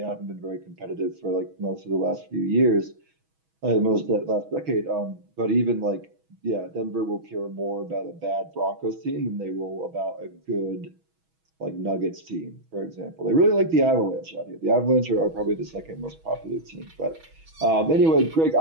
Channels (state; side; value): late; left; 6.2 ms